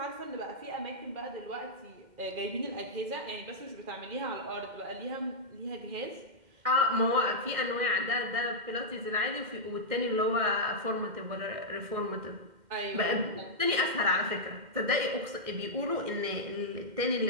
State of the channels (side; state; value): left; late; 2.1 ms